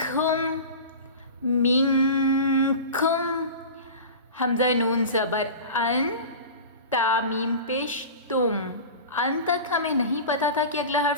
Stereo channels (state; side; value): inverted; both; correlation -0.32